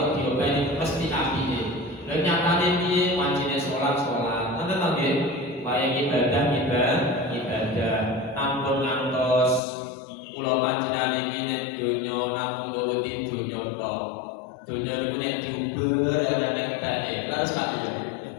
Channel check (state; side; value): drops out; right; at 9.6 s